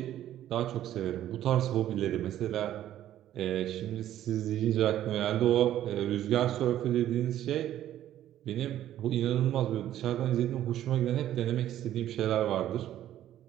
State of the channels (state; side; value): quieter; left; 12.2 dB